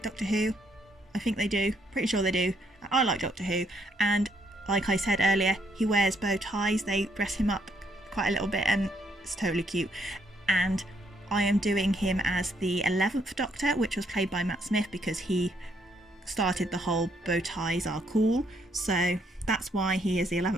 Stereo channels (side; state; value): both; normal; correlation 0.72